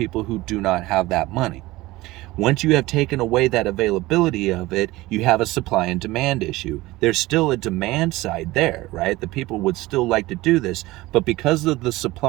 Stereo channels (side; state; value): left; quieter; 19.1 dB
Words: who do not have that money. Once you have taken away that availability of it, you have a supply and demand issue. There's still a demand side there, right? The people would still like to do this, but because of the